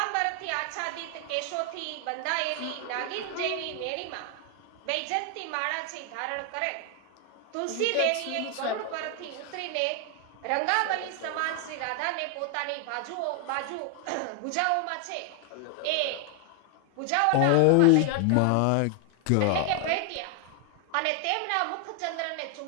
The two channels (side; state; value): both; different; correlation 0.00